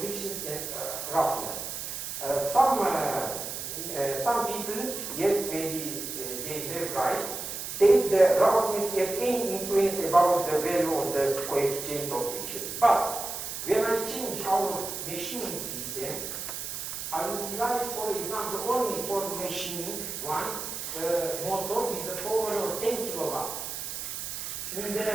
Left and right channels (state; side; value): noise; right; hiss, 6 dB below the sound